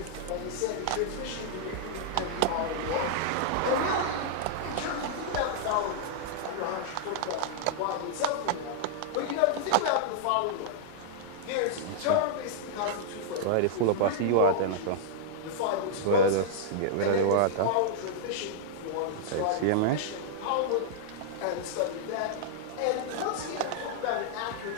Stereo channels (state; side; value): different; both; correlation -0.01